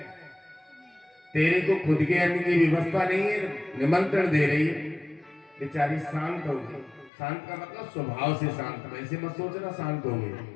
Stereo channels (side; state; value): right; drops out; at 7.1 s